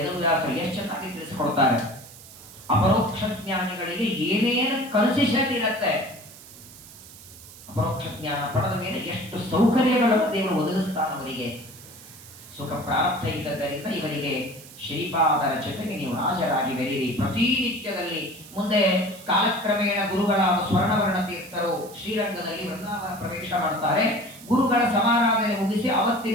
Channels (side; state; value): right; noise; hiss, 18 dB below the sound